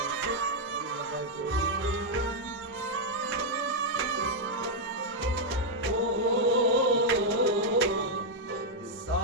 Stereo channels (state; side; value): normal; both; correlation -0.02